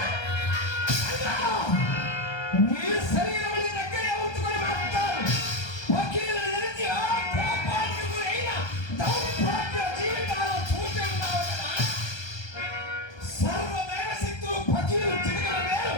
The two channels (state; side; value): late; right; 1.3 ms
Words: నీ శరీరం దగ్గరే ఉంచుకొని మాట్లాడు. వకీలు నిలిచి ఆ కోపానికి గురైన దౌర్భాగ్య జీవితాలు చూసి ఉన్నావు కదా. సర్వదేవ శక్తులు వకీలు చిటికల వేరు